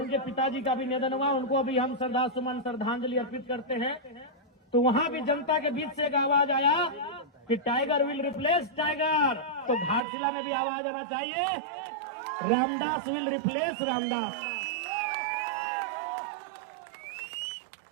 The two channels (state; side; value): drops out; left; at 10.0 s